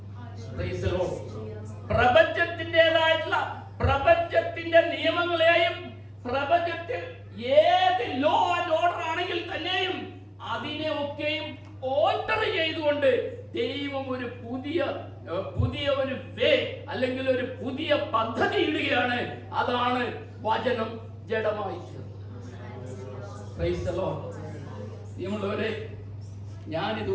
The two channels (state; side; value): identical; both; correlation 1.00